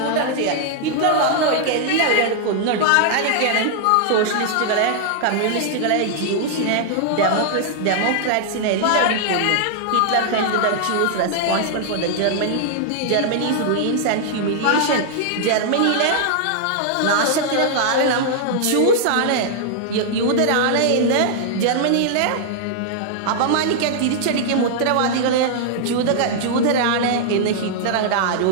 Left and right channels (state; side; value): different; both; correlation -0.01